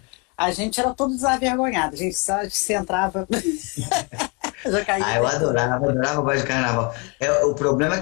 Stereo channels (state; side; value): quieter; right; 31.8 dB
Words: A gente era todo desavergonhado. A gente só se entrava... eu adorava o baile de carnaval. O problema é